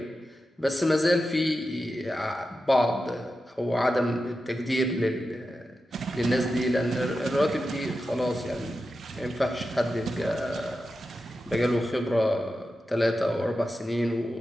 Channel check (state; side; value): normal; both; correlation 0.91